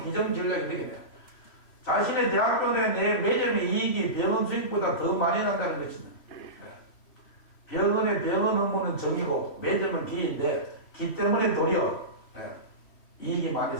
기정 전략이 되겠네요. 자신의 대학교 내 매점의 이익이 병원 수익보다 더 많이 난다는 것입니다. 병원의 병원 업무는 정이고 매점은 기인데 기 때문에 도리어 이익이 많이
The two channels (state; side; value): late; right; 3.0 ms